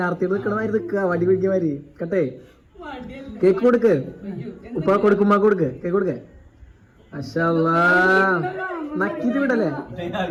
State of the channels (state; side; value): identical; both; correlation 1.00